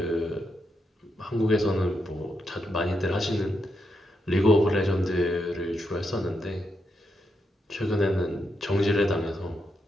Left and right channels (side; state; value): both; normal; correlation 0.83